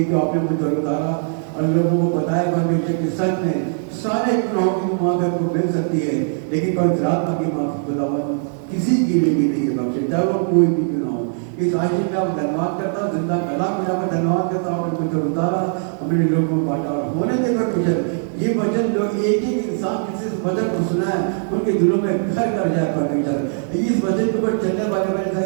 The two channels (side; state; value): left; silent; digital silence